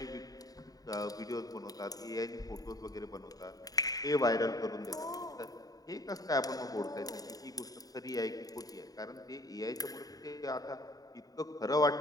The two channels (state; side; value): late; right; 0.18 ms